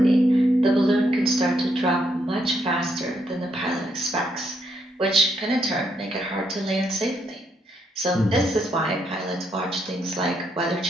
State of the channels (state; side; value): normal; both; correlation 0.76